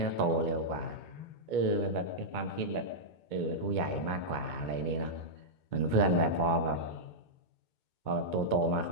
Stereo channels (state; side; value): late; right; 2.2 ms